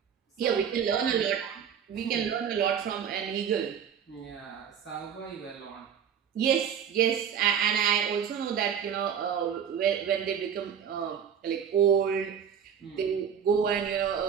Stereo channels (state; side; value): quieter; left; 8.0 dB